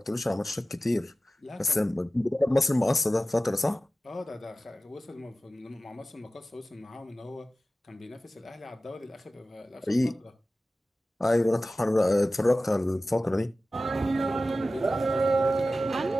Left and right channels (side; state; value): both; normal; correlation 0.95